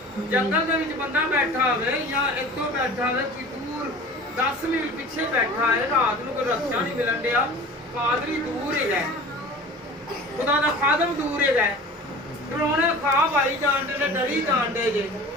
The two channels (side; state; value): both; normal; correlation 0.40